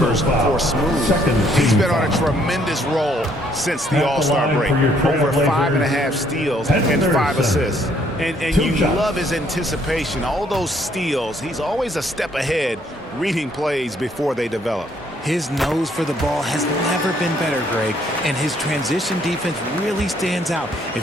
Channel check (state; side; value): normal; both; correlation 0.66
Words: for Smooth. He's been on a tremendous roll since the All-Star break. Over 5.5 steals and 5 assists. And you love his anticipation. All those steals, he's always a step ahead, reading plays before they develop. His nose for the ball has never been better, Greg, and his transition defense really stands out.